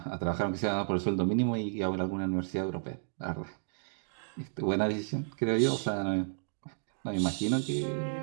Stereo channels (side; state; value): left; silent; digital silence